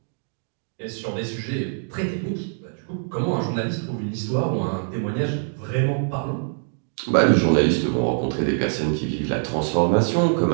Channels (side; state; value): left; silent; digital silence